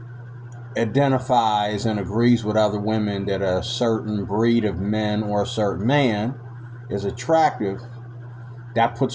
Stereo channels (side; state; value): both; identical; correlation 1.00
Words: identifies and agrees with other women that a certain breed of men or a certain man is attractive, that